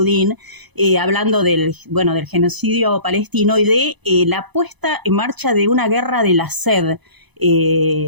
hablando del genocidio palestino y de la puesta en marcha de una guerra de la sed.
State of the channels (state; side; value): late; left; 1.0 ms